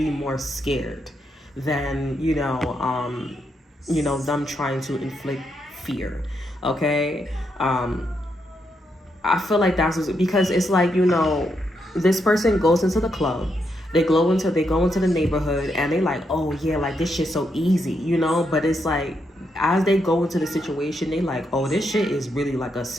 more scared than them trying to inflict fear. Okay, I feel like that's because it's like, this person goes into the club, they go into the neighborhood, and they like, oh yeah, like this shit's so easy, but it's like as they go into the situation, they like, oh, this shit is really like a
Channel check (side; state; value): both; normal; correlation 0.80